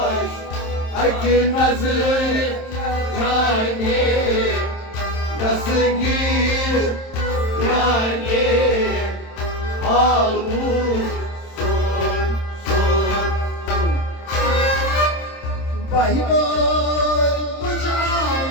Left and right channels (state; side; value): late; right; 27 ms